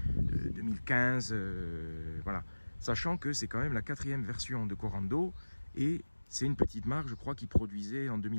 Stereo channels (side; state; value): both; inverted; correlation -1.00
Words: 2015. Voilà. Sachant que c'est quand même la 4e version de Corando et c'est une petite marque, je crois, qui produisait en